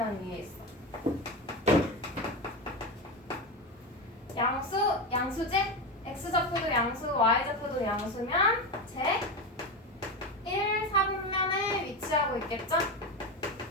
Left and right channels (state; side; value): normal; both; correlation 0.18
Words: 위에 있어? 양수지? x좌표도 양수, y좌표도 양수면 제 1, 4분면에 위치하고 있겠죠?